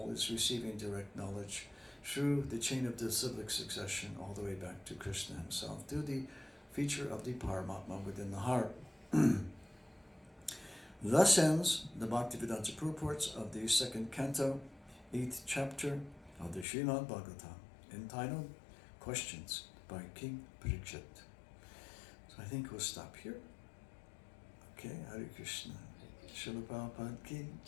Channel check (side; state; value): right; drops out; at 16.7 s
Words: is receiving direct knowledge through the chain of disciplic succession all the way back to Krishna himself, through the feature of the Paramatma within the heart. Thus ends the Bhaktivedanta purports of the second canto, 8th chapter of the Srimad Bhagavatam, entitled Questions by King Parikshit. So I think we'll stop here. Okay, Hare Krishna. Srila Prabhupada ki